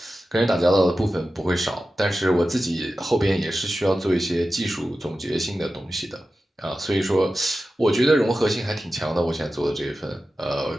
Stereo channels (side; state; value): both; normal; correlation 0.93